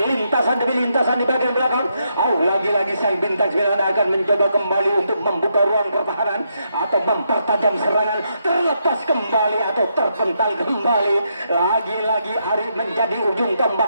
lintasan demi lintasan di bagian belakang. Lagi-lagi sang bintang 9 akan mencoba kembali untuk membuka ruang pertahanan atau mempertajam serangan, terlepas kembali atau terpental kembali. Lagi-lagi Ari menjadi ujung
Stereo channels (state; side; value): inverted; both; correlation -0.79